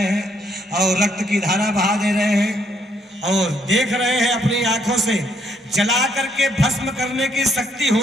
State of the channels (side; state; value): both; normal; correlation 0.71